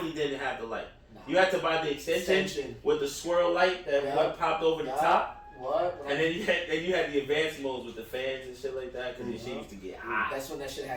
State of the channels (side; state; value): both; identical; correlation 1.00